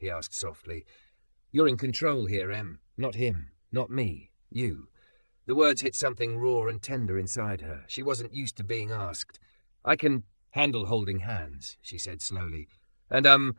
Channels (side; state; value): both; inverted; correlation -1.00